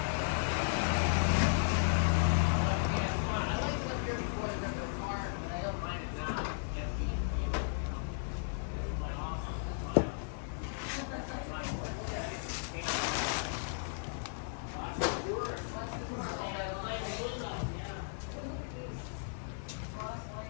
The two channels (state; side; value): silent; right; 54 dB below the other